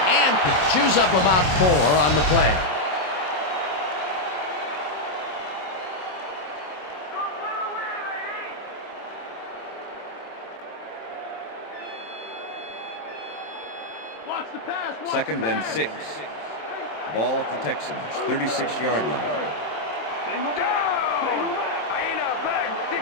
and chews up about 4 on the play. Second and 6. Ball at the Texans, 36-yard line. Single back. Single back. I ain't out back.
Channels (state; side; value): late; right; 27 ms